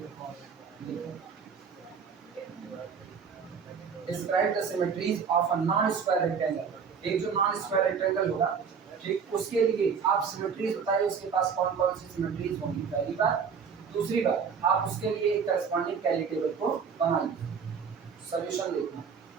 Describe the symmetries of a non-square rectangle. एक जो नॉन स्क्वायर रेक्टेंगल होगा, ठीक, उसके लिए आप सिमेट्रीज बताइए, उसके पास कौन कौन सी सिमेट्रीज होंगी, पहली बात। दूसरी बात, आप उसके लिए एक करस्पॉन्डिंग कैली टेबल को बना लीजिए। सॉल्यूशन देखना,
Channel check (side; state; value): left; quieter; 6.3 dB